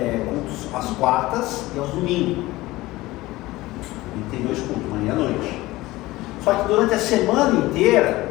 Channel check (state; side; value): quieter; right; 18.8 dB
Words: cultos às quartas e aos domingos. E tem 2 cultos, manhã e noite. Só que durante a semana